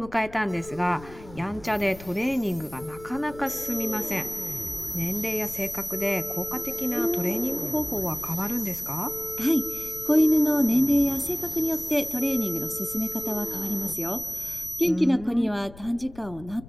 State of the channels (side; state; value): left; noise; rumble, 18 dB below the sound